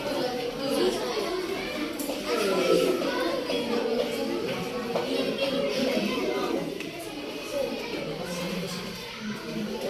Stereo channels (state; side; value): identical; both; correlation 1.00